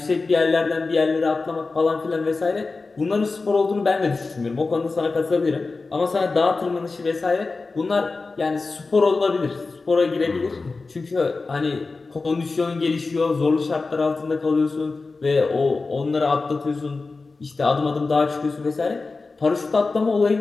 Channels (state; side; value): quieter; right; 3.9 dB